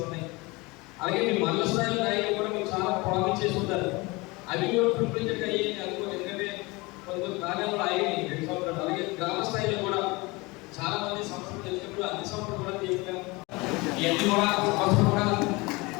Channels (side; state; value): right; quieter; 24.3 dB